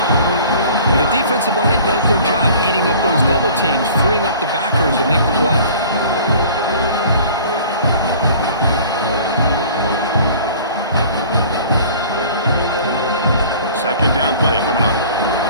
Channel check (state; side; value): inverted; both; correlation -0.46